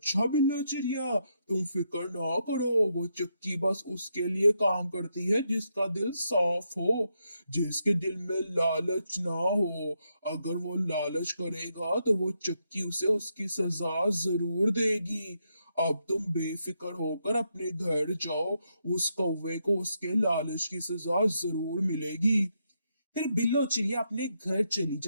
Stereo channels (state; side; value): inverted; both; correlation -0.80